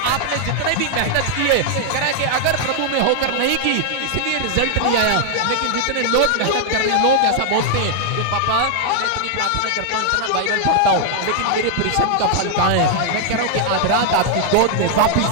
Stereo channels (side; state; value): both; different; correlation 0.00